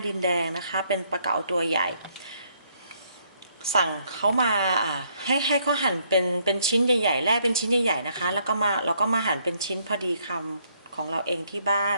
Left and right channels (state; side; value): inverted; both; correlation -0.70